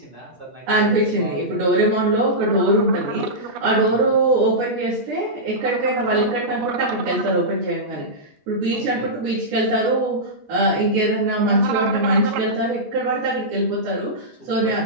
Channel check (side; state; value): left; late; 8.3 ms